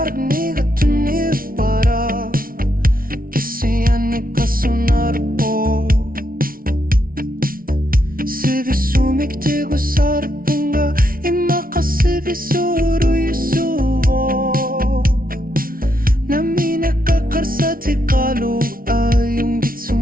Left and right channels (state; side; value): late; left; 0.42 ms